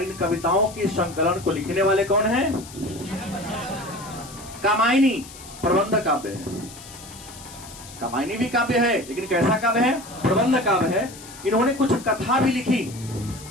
इन कविताओं के संकलन को लिखने वाले कौन हैं? कामायनी प्रबंध काव्य है। कामायनी भी काव्य है, लेकिन कैसा काव्य है? प्रबंध काव्य है। इन्होंने कुछ कथा भी लिखी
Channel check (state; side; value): noise; left; hiss, 17 dB below the sound